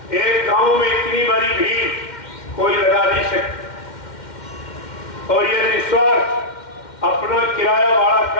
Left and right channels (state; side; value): late; right; 2.1 ms